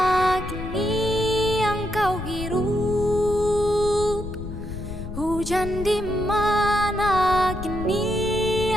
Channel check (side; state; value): left; noise; rumble, 8 dB below the sound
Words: kini yang kau hirup? Hujan di mana kini